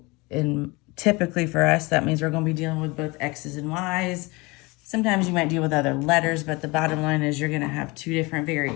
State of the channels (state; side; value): quieter; right; 25.1 dB